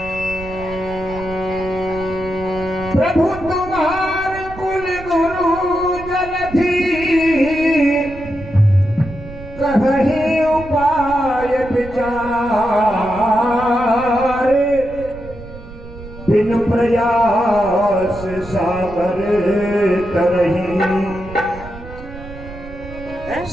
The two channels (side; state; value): right; noise; rumble, 15 dB below the sound